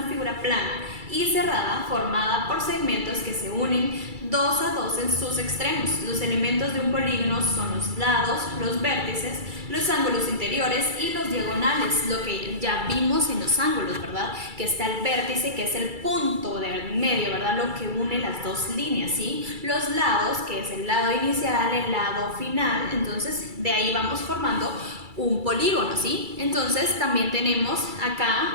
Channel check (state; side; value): late; left; 2.3 ms